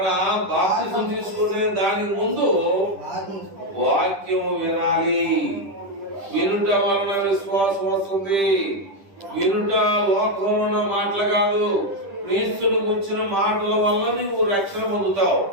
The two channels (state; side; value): late; left; 10 ms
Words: బాప్తిసం తీసుకునే దానికి ముందు వాక్యం వినాలి. వినుట వలన విశ్వాసం వస్తుంది. వినుట లోకంలో మాటలు కాదు, క్రీస్తుని గురించిన మాటల వల్ల నువ్వు రక్షణ పొందుతావు.